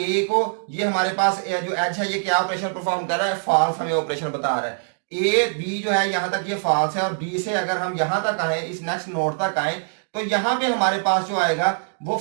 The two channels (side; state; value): left; silent; digital silence